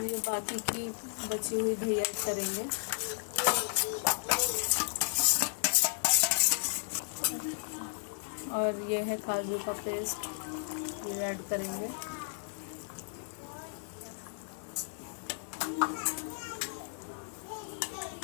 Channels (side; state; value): right; silent; digital silence